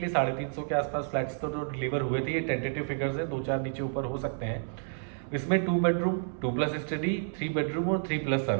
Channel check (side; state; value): left; silent; 58 dB below the other